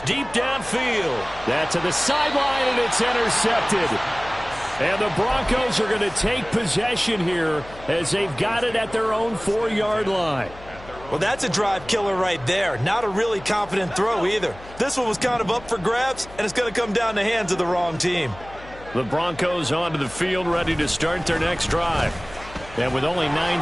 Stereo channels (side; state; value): left; noise; hum, 18 dB below the sound